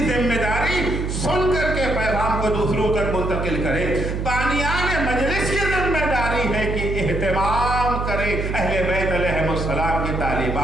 ذمہ داری سن کر کے پیغام کو دوسروں تک منتقل کرے. بانیان مجلس کی ذمہ داری ہے کہ اہتمام کرے اہل بیت علیہ السلام کی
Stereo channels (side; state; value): right; noise; hum, 2 dB below the sound